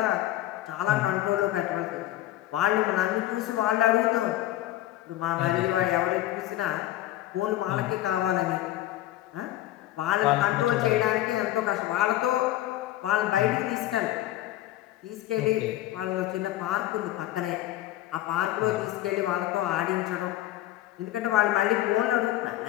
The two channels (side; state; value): right; quieter; 14.7 dB